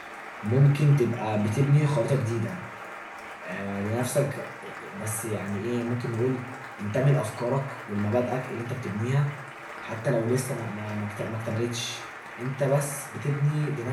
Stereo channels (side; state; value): both; identical; correlation 1.00